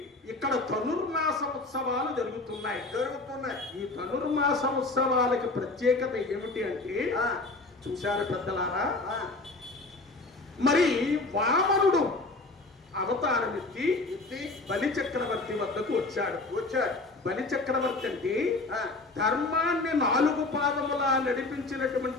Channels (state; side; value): quieter; right; 3.2 dB